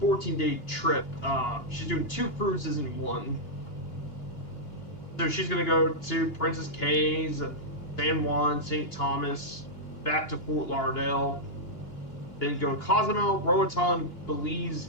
14-day trip. She's doing 2 cruises in one. So she's going to go to Princess Cays, San Juan, St. Thomas, back to Fort Lauderdale, then go to Cozumel, Roatan,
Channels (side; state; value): right; late; 2.9 ms